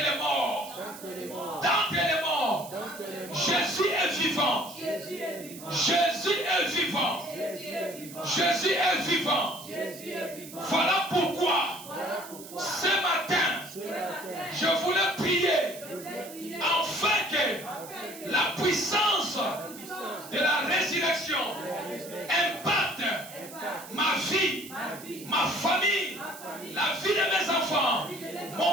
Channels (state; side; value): noise; right; hiss, 15 dB below the sound